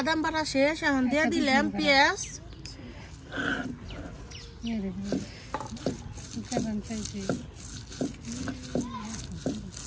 বাটা শেষ এখন দিয়ে দিলাম পেঁয়াজ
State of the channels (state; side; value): identical; both; correlation 1.00